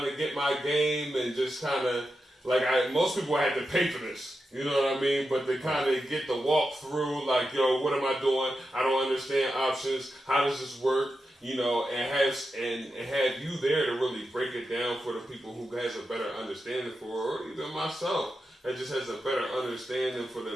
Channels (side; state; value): both; normal; correlation 0.89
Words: of get my game and just kind of most people had to pay for this. You know what I mean? But they kind of get the walk through, like, yo, what am I doing? I don't understand options. How does this work? You know, and have you there to really break it down for the people who has a better understanding for, or even myself that just has a better understanding for